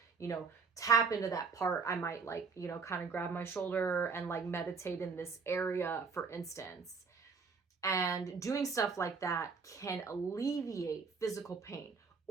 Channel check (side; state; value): left; quieter; 5.1 dB